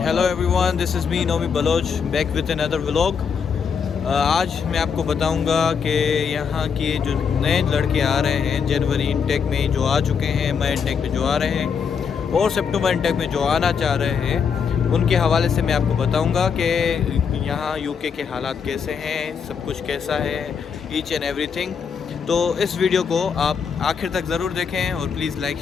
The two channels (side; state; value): right; quieter; 6.4 dB